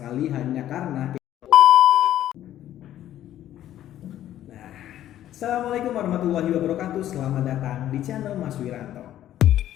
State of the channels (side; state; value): right; quieter; 12.3 dB